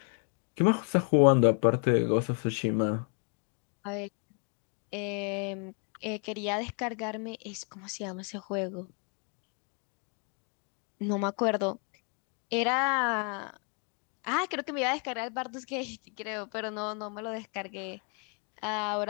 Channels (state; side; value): quieter; right; 39.4 dB